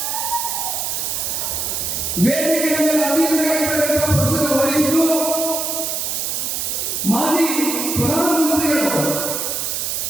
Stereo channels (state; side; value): noise; right; hiss, 1 dB below the sound